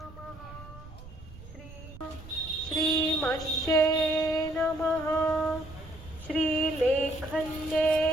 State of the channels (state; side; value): noise; right; rumble, 16 dB below the sound